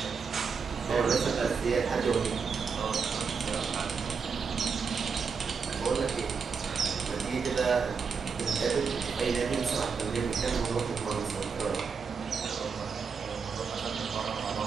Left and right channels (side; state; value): left; quieter; 5.7 dB